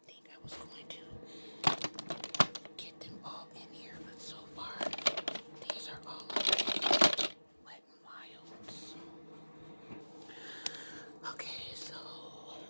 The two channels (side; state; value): both; inverted; correlation -1.00